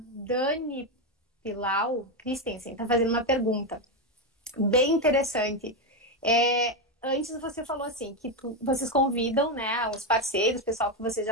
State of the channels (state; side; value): normal; both; correlation 0.09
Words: Pilau Christensen está fazendo uma pergunta bem interessante. Antes você falou assim, que vocês convidam, né, os parceiros, o pessoal que vocês